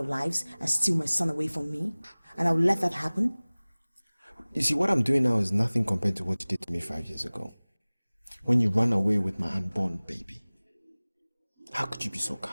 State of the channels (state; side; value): inverted; both; correlation -1.00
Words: lives and steal my son away from me? And I will let that happen? You see, what I'm doing now is nothing compared to what you did to me 5 years ago. When you ran away with my unborn baby. How could you be so